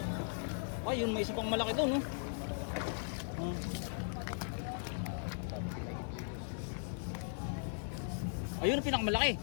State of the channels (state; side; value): silent; right; digital silence